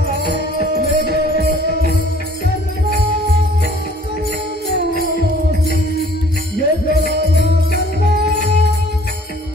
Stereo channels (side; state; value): both; normal; correlation 0.55